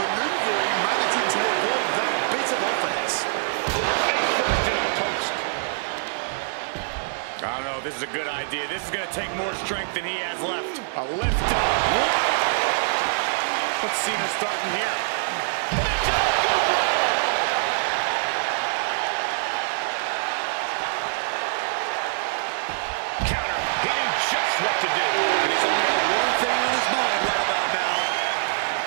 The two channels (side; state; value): left; silent; 62 dB below the other